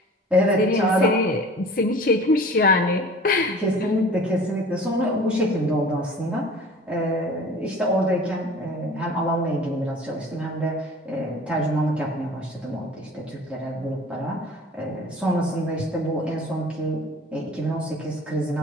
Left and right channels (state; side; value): normal; both; correlation 0.44